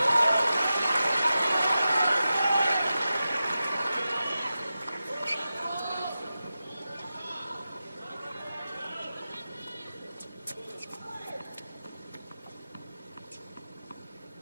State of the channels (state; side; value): inverted; both; correlation -0.92